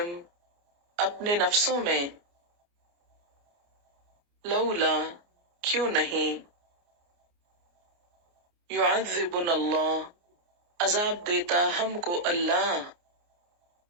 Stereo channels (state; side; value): late; left; 29 ms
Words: اپنے نفسوں میں، لولا کیوں نہیں، یعذبنا اللہ عذاب دیتا ہم کو اللہ،